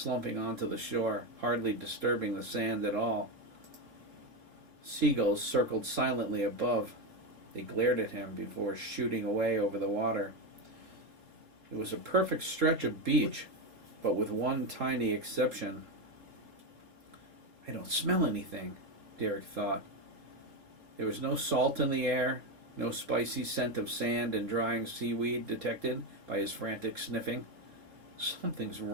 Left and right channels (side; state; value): left; late; 4.0 ms